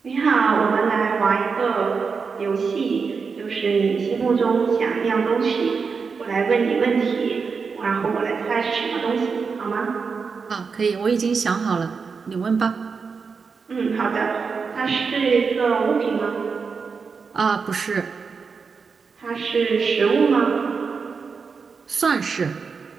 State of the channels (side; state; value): left; quieter; 5.3 dB